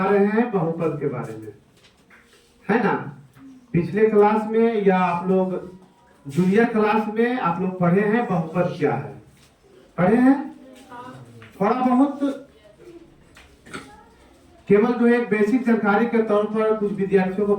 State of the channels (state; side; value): identical; both; correlation 1.00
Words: रहे हैं बहुपद के बारे में, है ना। पिछले क्लास में या आप लोग जूनियर क्लास में आप लोग पढ़े हैं बहुपद क्या है, पढ़े हैं थोड़ा बहुत। केवल जो एक बेसिक जानकारी के तौर पर कुछ विद्यार्थियों को